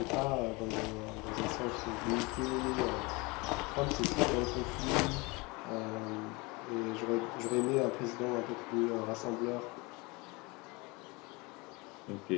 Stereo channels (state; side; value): quieter; right; 26.0 dB